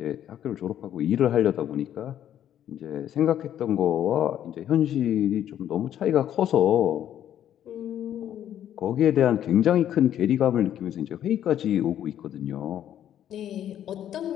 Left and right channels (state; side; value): quieter; right; 10.7 dB